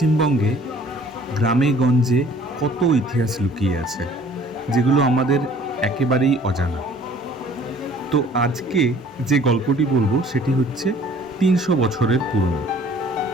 গ্রামে গঞ্জে কত ইতিহাস লুকিয়ে আছে, যেগুলো আমাদের একেবারেই অজানা। তো আজকে যে গল্পটি বলবো সেটি হচ্ছে 300 বছরের পুরনো।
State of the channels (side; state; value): both; normal; correlation 0.53